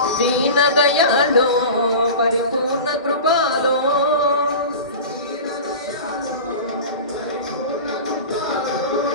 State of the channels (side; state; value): both; inverted; correlation -0.32